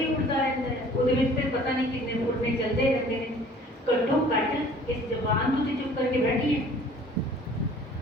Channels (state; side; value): normal; both; correlation 0.51